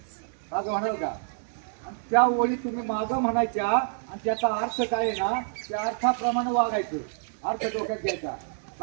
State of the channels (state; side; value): silent; left; digital silence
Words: मागं म्हणाल का? आणि त्या ओळी तुम्ही मागं म्हणायच्या आणि त्याचा अर्थ काय आहे ना, त्या अर्थाप्रमाणे वागायचं. अर्थ डोक्यात घ्यायचा.